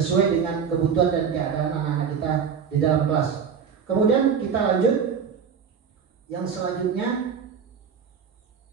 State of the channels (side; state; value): left; quieter; 6.8 dB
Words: dengan kebutuhan dan keadaan anak-anak kita di dalam kelas. Kemudian kita lanjut yang selanjutnya.